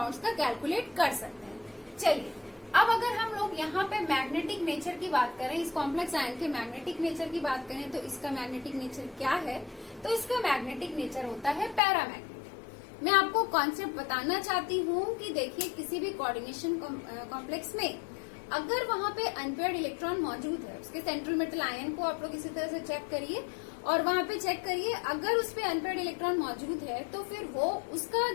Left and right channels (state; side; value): drops out; right; at 11.8 s